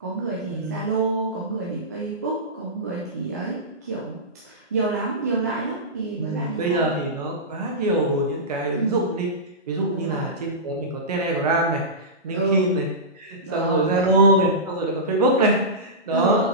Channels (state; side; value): normal; both; correlation -0.17